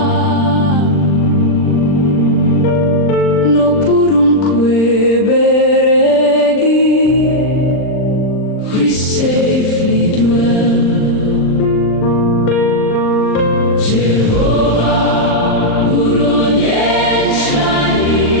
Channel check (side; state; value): right; late; 39 ms